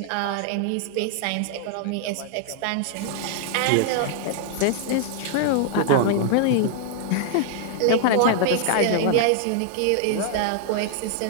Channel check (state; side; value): different; both; correlation 0.00